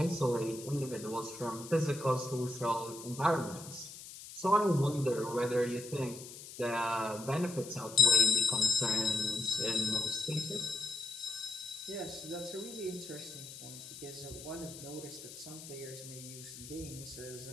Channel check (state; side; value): noise; left; hiss, 14 dB below the sound